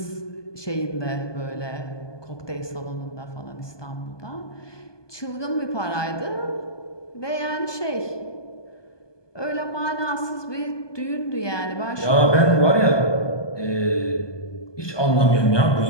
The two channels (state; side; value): late; right; 1.2 ms